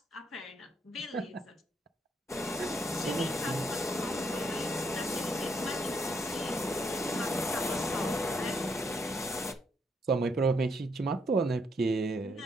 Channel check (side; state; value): both; normal; correlation 0.73